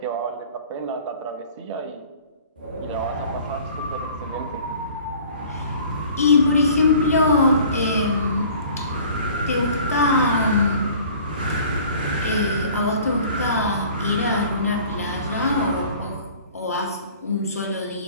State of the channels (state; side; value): inverted; both; correlation -0.48